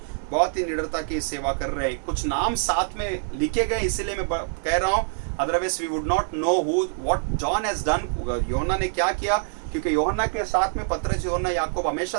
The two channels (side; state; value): left; silent; digital silence